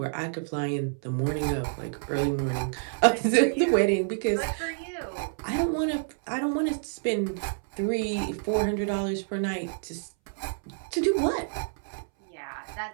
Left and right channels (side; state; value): left; silent; 59 dB below the other